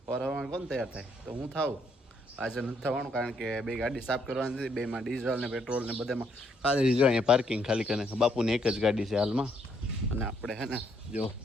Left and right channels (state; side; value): normal; both; correlation 0.72